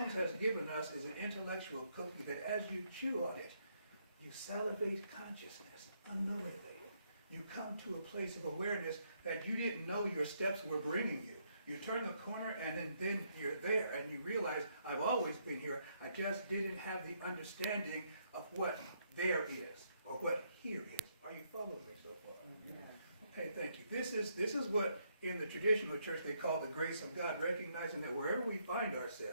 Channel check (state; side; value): inverted; both; correlation -0.74